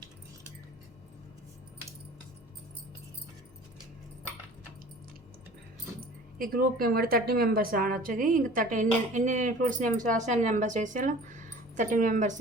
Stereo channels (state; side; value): normal; both; correlation 0.45